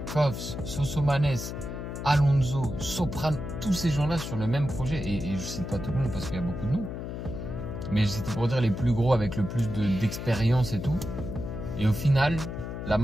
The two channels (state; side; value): noise; left; hum, 6 dB below the sound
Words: Koffs, Sosomanes, Alonso, Soprano, tous ces gens-là sur le même projet. Et je cite pas tout le monde parce qu'il y a beaucoup de noms. Mais c'était pour dire les plus gros avec le plus d'expérience et tout. Et au final, la